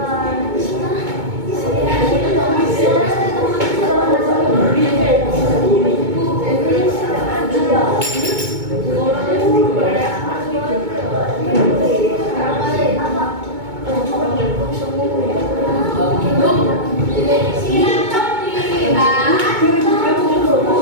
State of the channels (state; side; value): late; left; 2.2 ms